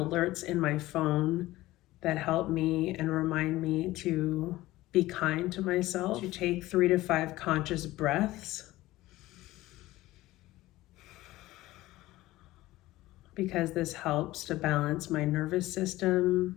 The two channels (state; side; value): quieter; right; 17.3 dB